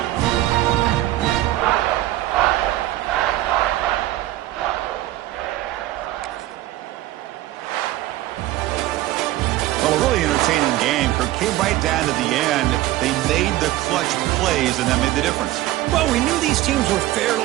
Well, a really entertaining game. Kirk came right down to the end. They made the clutch plays, and that made the difference. Well, we knew these teams were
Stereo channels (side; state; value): left; quieter; 15.8 dB